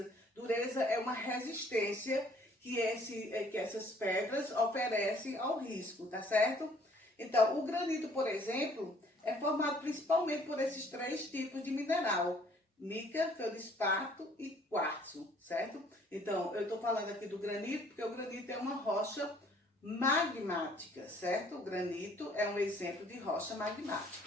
Dureza é uma resistência que essas pedras oferecem ao risco, tá certo? Então, o granito, por exemplo, é formado principalmente por esses três tipos de mineral: mica, feldespato e quartzo, certo? Então, eu estou falando aqui do granito porque o granito é uma rocha magmática, certo? O granito é um exemplo de rocha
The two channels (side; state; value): both; normal; correlation 0.59